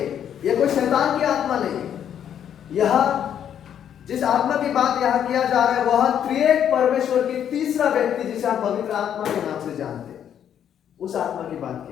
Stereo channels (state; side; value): quieter; right; 9.3 dB